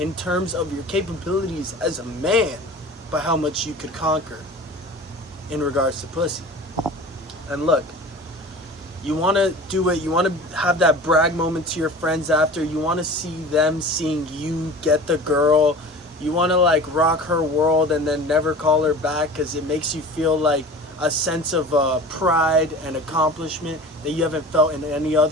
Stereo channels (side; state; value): both; normal; correlation 0.39